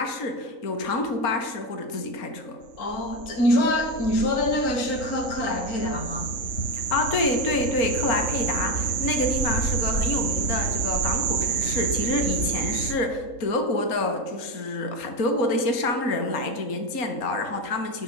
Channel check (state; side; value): late; right; 3.8 ms